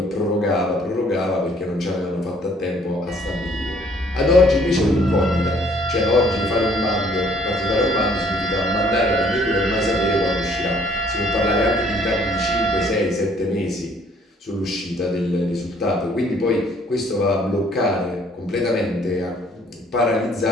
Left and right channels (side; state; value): both; normal; correlation 0.61